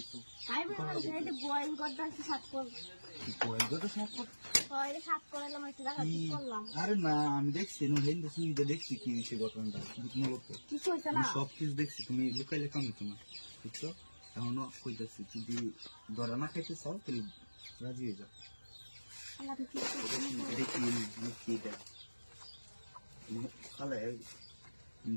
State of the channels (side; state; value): both; inverted; correlation -1.00